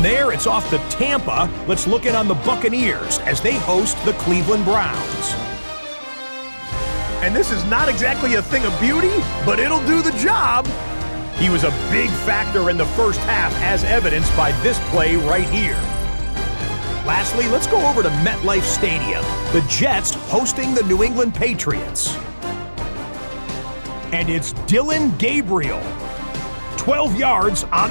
there, it's off to Tampa. Let's look in on the Buccaneers as they host the Cleveland Browns. And this is not exactly a thing of beauty, but it'll do the job. He was a big factor in the first half, as evidenced by this play right here. Lastly, let's go over to MetLife Stadium. The Jets hosting the New England Patriots. And it's Dillon Gabriel. 12 yards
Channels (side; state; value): both; inverted; correlation -1.00